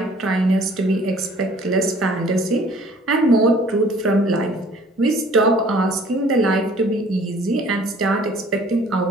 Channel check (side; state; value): both; normal; correlation 0.54